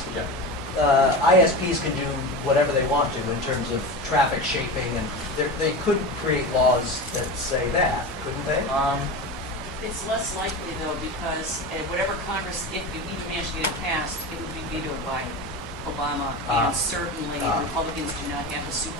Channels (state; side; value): normal; both; correlation 0.26